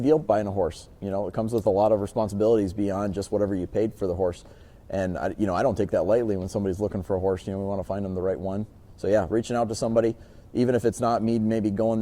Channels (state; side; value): identical; both; correlation 1.00